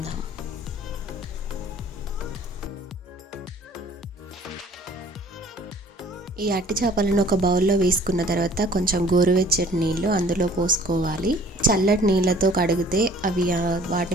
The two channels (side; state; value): both; normal; correlation 0.53